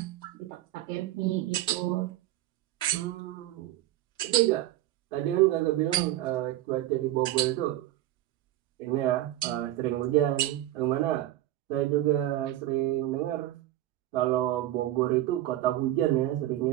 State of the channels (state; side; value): quieter; left; 14.5 dB